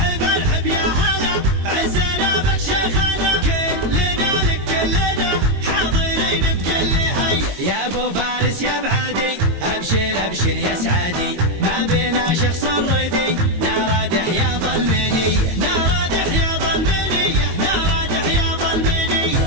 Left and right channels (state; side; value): late; left; 22 ms